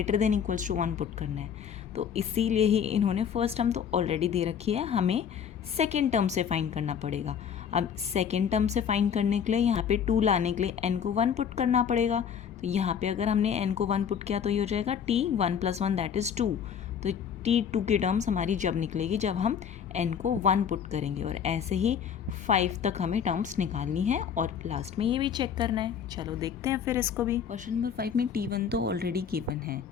than equals to 1 put करना है. तो इसीलिए ही इन्होंने फर्स्ट टर्म तो ऑलरेडी दे रखी है, हमें सेकेंड टर्म से फाइंड करना पड़ेगा. अब सेकेंड टर्म से फाइंड करने के लिए यहाँ पे 2 लाने के लिए n को 1 पुट करना पड़ेगा. तो यहाँ पे अगर हमने n को 1 पुट किया तो ये हो जाएगा t1 + 1 दैट इज़ 2. तो t2 की टर्म्स हमारी जब निकलेगी जब हम n को 1 पुट करेंगे. और ऐसे ही 5 तक हमें टर्म्स निकालनी है और लास्ट में ये भी चेक करना है. चलो देखते हैं फिर इसको भी. क्वेश्चन नंबर 5 में t1 तो ऑलरेडी गिवन है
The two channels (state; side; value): quieter; right; 7.7 dB